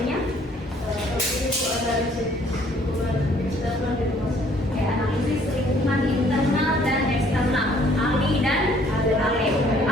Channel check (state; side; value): normal; both; correlation 0.61